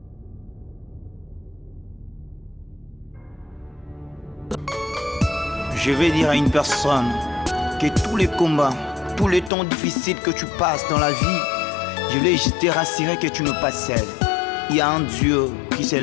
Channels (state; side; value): drops out; right; at 9.5 s